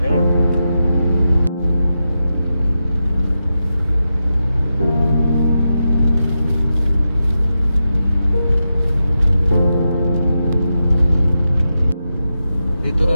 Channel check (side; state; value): both; inverted; correlation -0.89